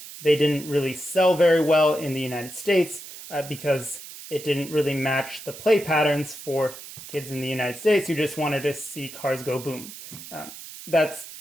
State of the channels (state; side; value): noise; right; hiss, 14 dB below the sound